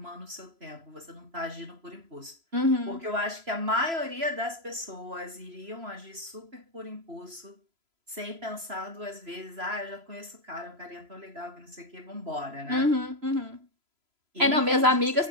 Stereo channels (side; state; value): left; late; 3.0 ms